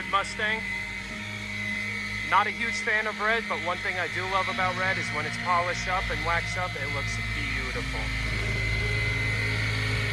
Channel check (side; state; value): both; identical; correlation 1.00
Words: Mustang. Not a huge fan of red, but one thing I do love about red is when it's polished up and waxed up, it looks beautiful.